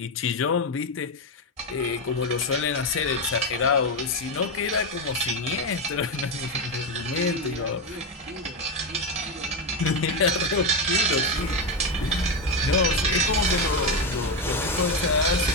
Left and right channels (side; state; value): both; normal; correlation 0.11